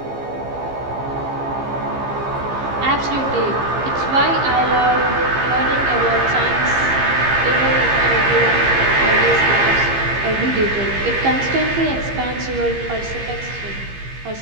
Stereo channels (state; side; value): late; left; 15 ms